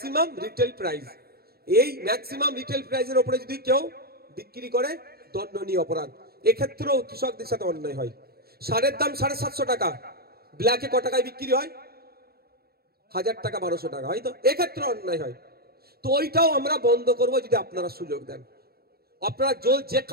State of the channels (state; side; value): late; left; 0.45 ms